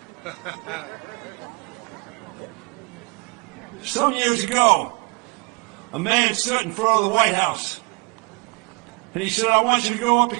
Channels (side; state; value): left; quieter; 31.9 dB